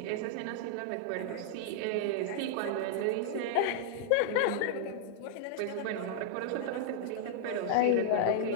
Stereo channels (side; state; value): both; different; correlation -0.01